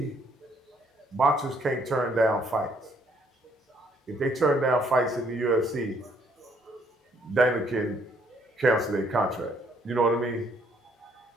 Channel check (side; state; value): both; normal; correlation 0.66